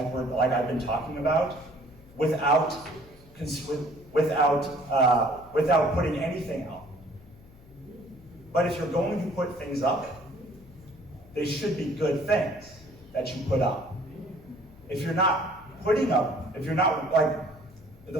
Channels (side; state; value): left; noise; hum, 24 dB below the sound